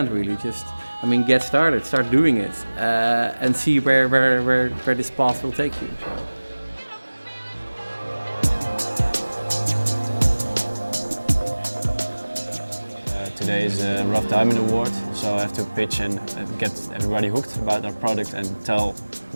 really. Get started, start doing it, and see where this path will take you. So. Today is a Rough Diamond Award, so I have to pitch and get everybody hooked about our product and tell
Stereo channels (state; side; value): inverted; both; correlation -1.00